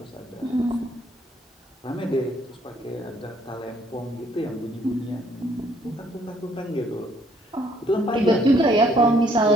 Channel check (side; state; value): both; normal; correlation 0.65